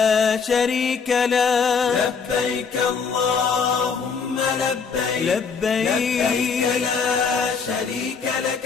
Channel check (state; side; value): quieter; right; 5.7 dB